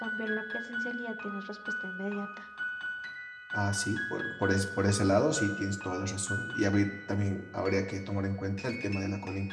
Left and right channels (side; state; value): both; identical; correlation 1.00